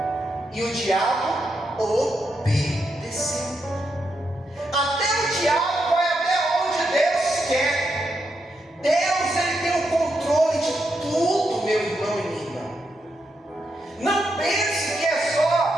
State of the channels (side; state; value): both; normal; correlation 0.83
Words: E o diabo obedeceu. Até o diabo vai até onde Deus quer. Deus ele tem o controle de tudo, meu irmão e minha irmã. Não pense que é